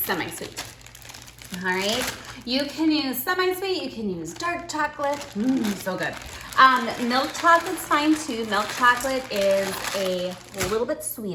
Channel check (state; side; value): identical; both; correlation 1.00